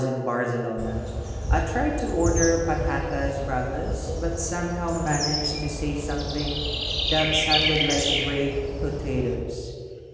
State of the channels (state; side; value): identical; both; correlation 1.00